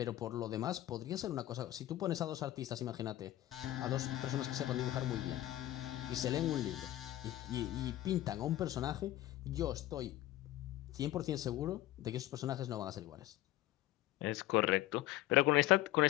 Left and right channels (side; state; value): right; quieter; 14.9 dB